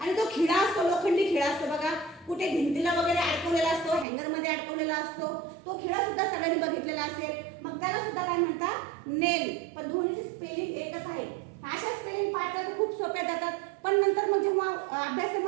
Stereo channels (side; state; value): left; drops out; at 4.0 s